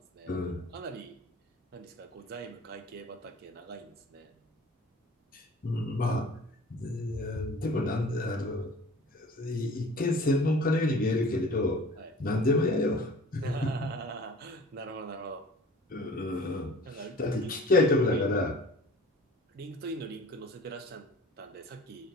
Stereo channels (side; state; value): both; normal; correlation 0.46